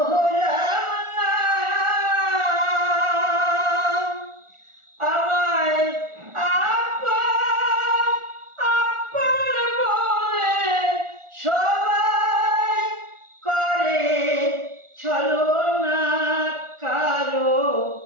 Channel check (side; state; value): left; late; 1.4 ms